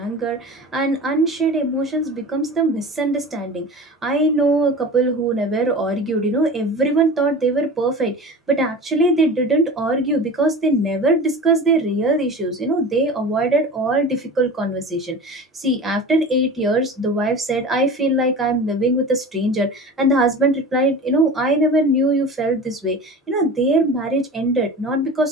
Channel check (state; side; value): normal; both; correlation 0.35